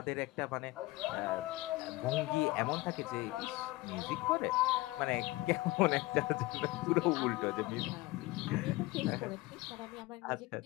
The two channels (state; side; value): quieter; right; 20.3 dB